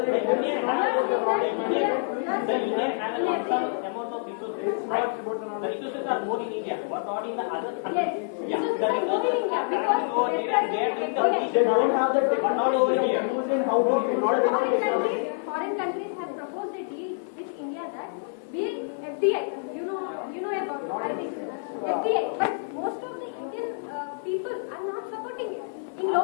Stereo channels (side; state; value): right; silent; digital silence